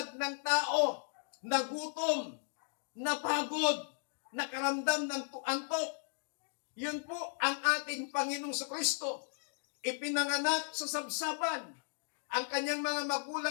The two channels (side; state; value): right; silent; digital silence